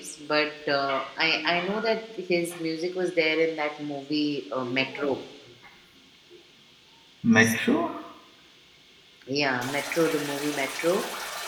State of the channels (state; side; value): identical; both; correlation 1.00